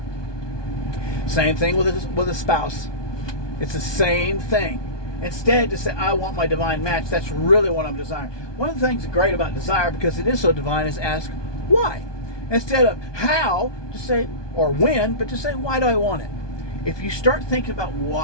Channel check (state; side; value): late; right; 1.2 ms